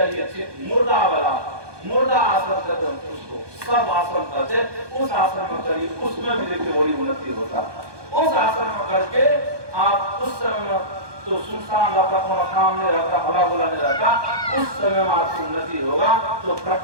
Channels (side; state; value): left; late; 1.2 ms